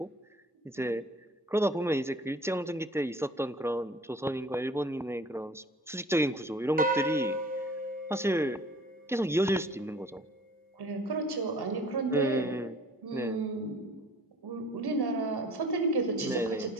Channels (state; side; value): normal; both; correlation 0.49